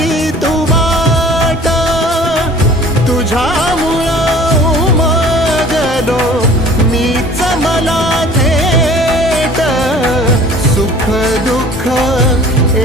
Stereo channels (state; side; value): normal; both; correlation 0.48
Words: तू वाट, तुझ्यामुळं उमगलो मीच मला थेट। सुख दुःख